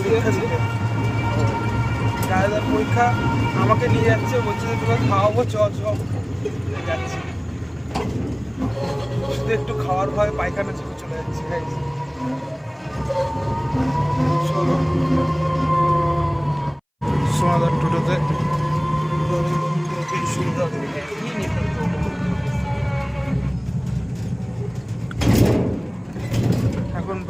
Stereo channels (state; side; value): identical; both; correlation 1.00